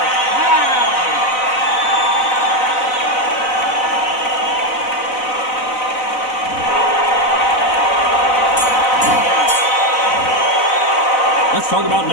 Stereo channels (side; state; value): right; late; 4.0 ms